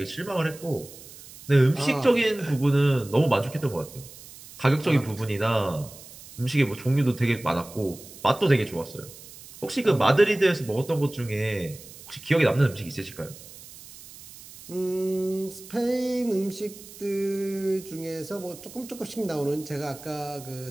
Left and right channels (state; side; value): noise; right; hiss, 18 dB below the sound